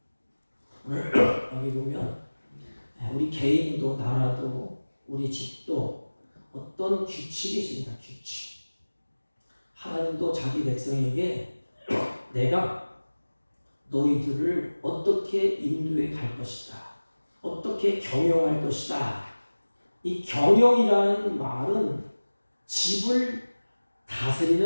오늘 여기 보면 우리 개인도 나라도 우리 집도 어떤 규칙이 있습니다. 규칙. 하나님도 자기 백성에게 내가 너희들을 어떻게 인도해 갈 것이다. 어떻게 경영할 것이다. 이 경영이라는 말은 집을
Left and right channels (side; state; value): both; inverted; correlation -1.00